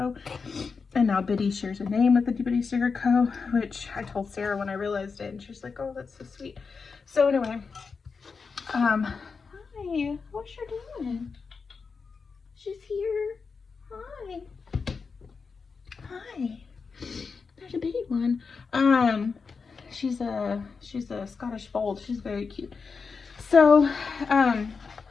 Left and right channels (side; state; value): right; quieter; 5.1 dB